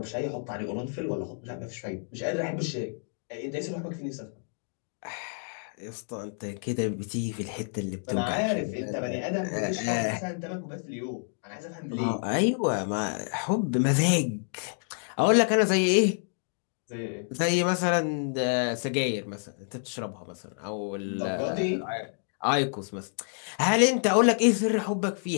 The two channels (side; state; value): right; silent; 59 dB below the other